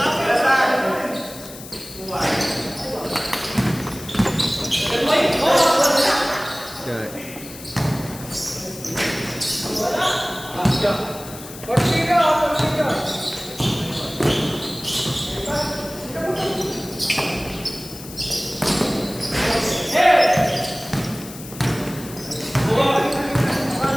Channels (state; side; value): noise; left; hiss, 15 dB below the sound